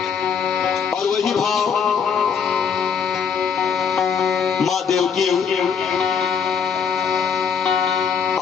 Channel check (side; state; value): right; quieter; 6.7 dB